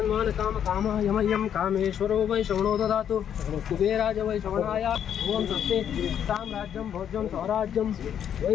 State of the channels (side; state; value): right; quieter; 9.1 dB